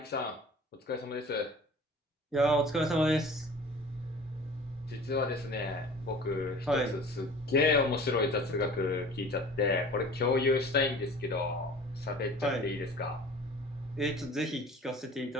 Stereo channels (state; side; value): normal; both; correlation 0.44